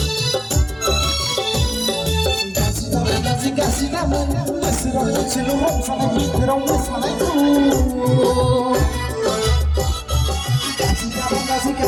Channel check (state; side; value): identical; both; correlation 1.00